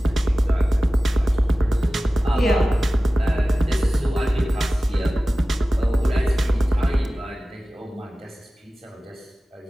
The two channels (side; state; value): both; normal; correlation 0.96